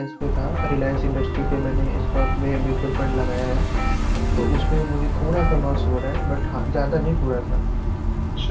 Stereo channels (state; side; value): identical; both; correlation 1.00